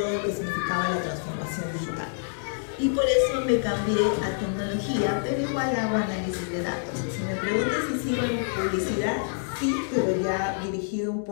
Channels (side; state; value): right; silent; digital silence